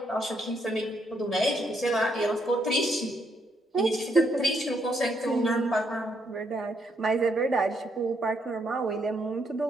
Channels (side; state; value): both; normal; correlation 0.75